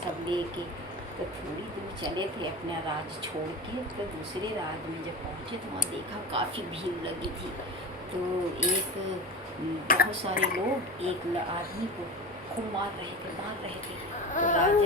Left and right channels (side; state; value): both; normal; correlation 0.28